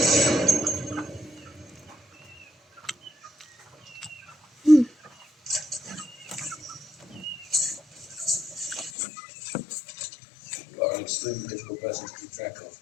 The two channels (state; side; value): drops out; right; at 8.9 s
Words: You are an extremely difficult person to keep track of.